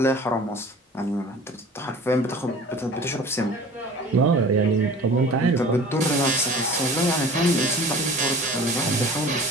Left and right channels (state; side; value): normal; both; correlation 0.42